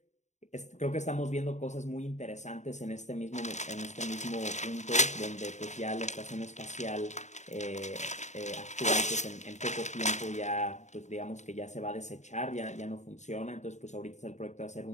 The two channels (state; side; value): late; right; 0.34 ms